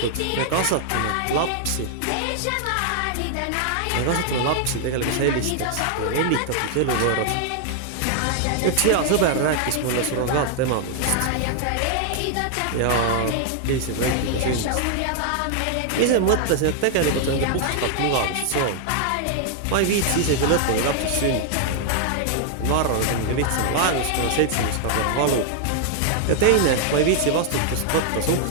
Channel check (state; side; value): different; both; correlation 0.00